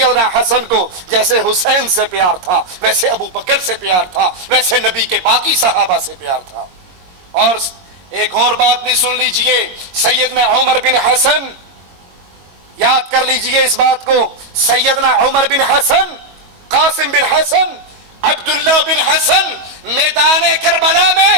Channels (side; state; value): left; late; 22 ms